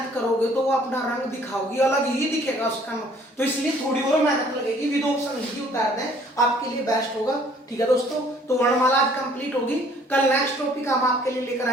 करोगे तो वो अपना रंग दिखाओगी, अलग ही दिखेगा उसका, तो इसलिए थोड़ी और मेहनत लगेगी, विद ऑप्शन ही उतार दें आपके लिए बेस्ट होगा। ठीक है दोस्तों, तो वर्णमाला आज कंप्लीट होगी, कल नेक्स्ट टॉपिक हम आपके लिए लेकर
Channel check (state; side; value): normal; both; correlation 0.58